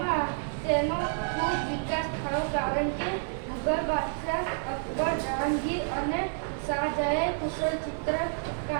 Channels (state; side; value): silent; left; 58 dB below the other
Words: તેનો ખૂબ વિકાસ થયો, કારણ કે મુઘલ બાદશાહ અકબર, જહાંગીર અને શાહજહાએ કુશળ